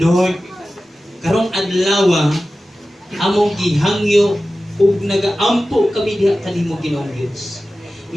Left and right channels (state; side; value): normal; both; correlation 0.95